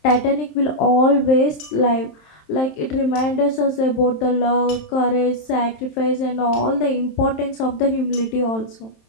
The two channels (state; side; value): late; right; 27 ms